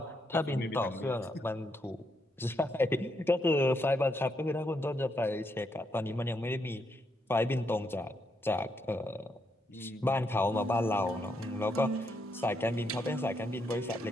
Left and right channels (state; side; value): normal; both; correlation 0.78